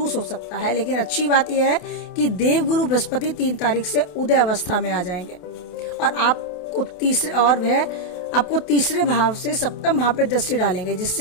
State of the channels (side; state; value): right; late; 28 ms